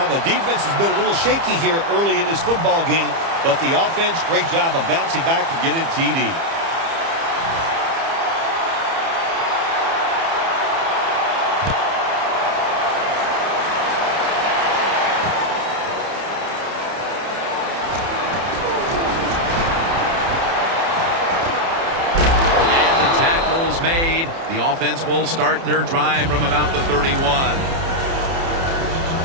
The defense has been a little shaky here early in this football game, but the offense, great job of bouncing back and getting TD. Made. The offense will start their drive from about the 31.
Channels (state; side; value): late; left; 30 ms